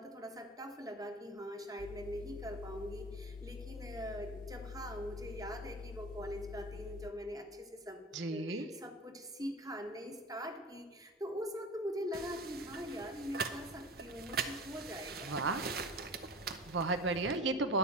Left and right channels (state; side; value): normal; both; correlation 0.35